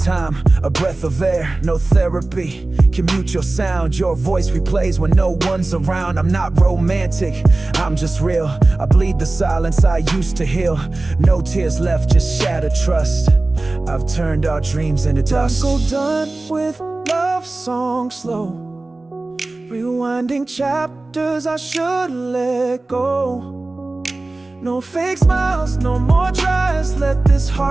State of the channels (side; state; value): left; quieter; 3.1 dB